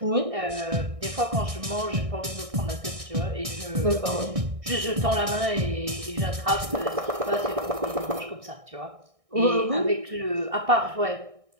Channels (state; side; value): late; left; 1.6 ms